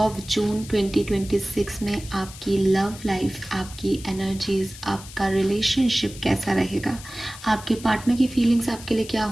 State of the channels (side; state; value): left; noise; hiss, 16 dB below the sound